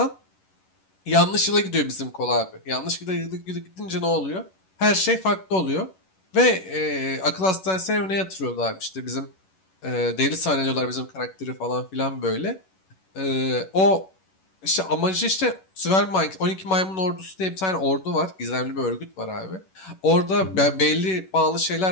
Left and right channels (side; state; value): right; late; 11 ms